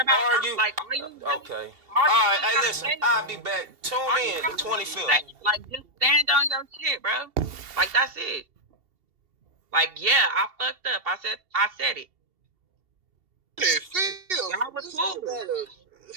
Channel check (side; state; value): left; late; 2.7 ms